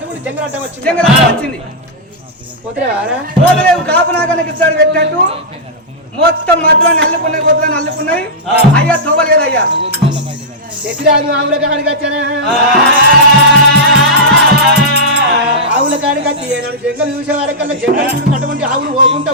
చెంగలట్ట వచ్చింది చెంగలట్ట వచ్చింది పోతలేవు కాపునాగానికి ఇస్తాడు పెట్టినట్టు మొత్తం మధ్యలో నల్లుకున్నాయి మొత్తం నల్లుకున్నాయి అయ్యా తోవలేదు అయ్యా ఎదురాదు ఆవుల కాడికి వచ్చానా ఆవుల కాడికి వచ్చి ఏనాడు జంగలు చూసే వారికల్లా జంగలు అటువంటి ఆవులు పోకుండా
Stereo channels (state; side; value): normal; both; correlation -0.10